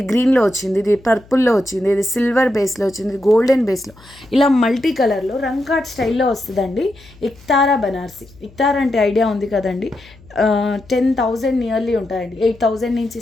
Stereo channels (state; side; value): noise; left; hum, 25 dB below the sound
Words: గ్రీన్లో వచ్చింది, ఇది పర్పుల్లో వచ్చింది, ఇది సిల్వర్ బేస్లో వచ్చింది, ఇది గోల్డెన్ బేస్లో, ఇలా మల్టీ కలర్లో రంగ్ కార్డ్ స్టైల్లో వస్తుందండి. ఇక్తారా బనార్సి. ఇక్తారా అంటే ఐడియా ఉంది కదండి. 10,000 నియర్లీ ఉంటాయండి. 8,000 నుంచి